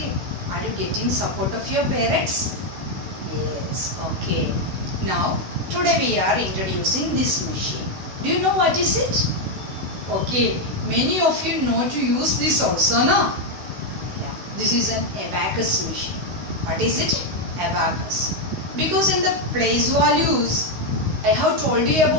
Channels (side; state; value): left; late; 16 ms